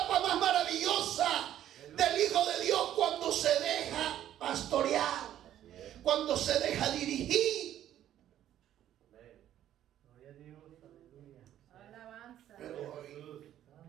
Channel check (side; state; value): left; quieter; 11.7 dB